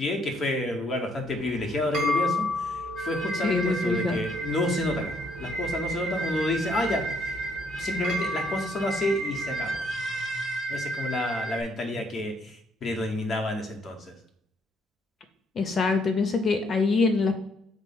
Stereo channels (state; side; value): normal; both; correlation 0.69